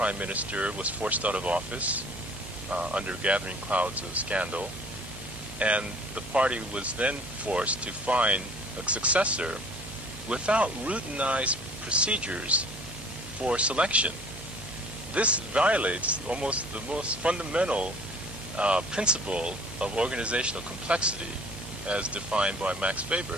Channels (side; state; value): both; normal; correlation 0.51